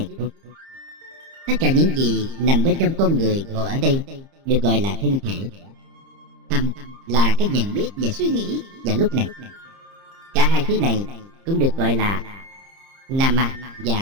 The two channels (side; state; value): left; late; 30 ms